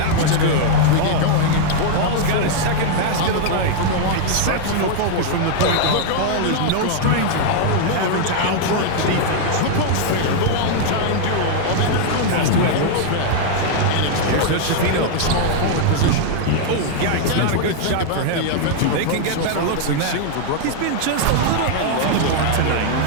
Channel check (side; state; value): both; different; correlation 0.00